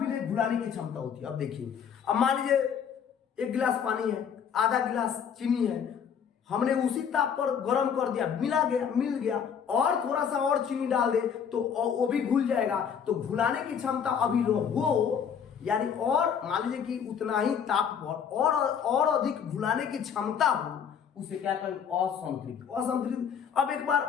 घुलाने की क्षमता होती है। अब देखिए, अब मान लीजिए एक गिलास पानी है, आधा गिलास चीनी है, हमने उसी ताप पर गर्म कर दिया, मिल गया, और थोड़ा सा और चीनी डाल दे तो वो भी घुल जाएगा। तो घुलाने की क्षमता अभी हो, यानी और मान लीजिए कि उतना ही ताप पर और अधिक घुलाने की क्षमता हो, उसे क्या कहें, असंतृप्त। अब एक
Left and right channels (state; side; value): quieter; right; 7.6 dB